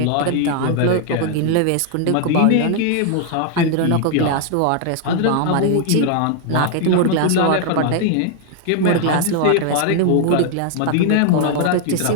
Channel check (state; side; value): different; both; correlation 0.00